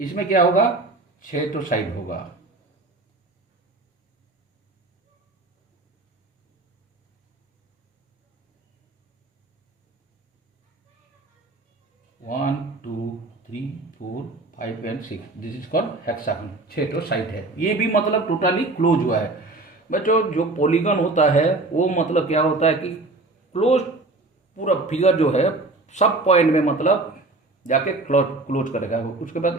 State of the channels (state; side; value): quieter; left; 3.1 dB